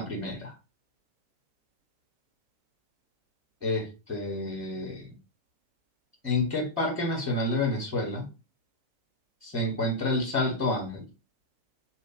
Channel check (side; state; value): left; late; 2.2 ms